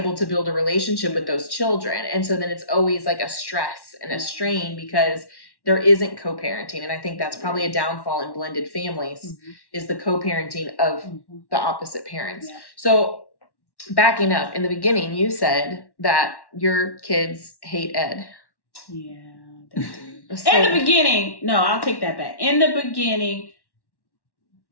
to build a relationship with those children. And so then it's always like a stress and a strain because there isn't co-parenting. And I think that's probably a downfall in blended families is the co-parenting of the opposite parents. Yeah. So backing up, in the beginning, you said that your kids hate Ed. Yeah, they do. So- In the beginning, no, I'll take that back. In the beginning,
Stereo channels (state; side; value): late; right; 1.1 ms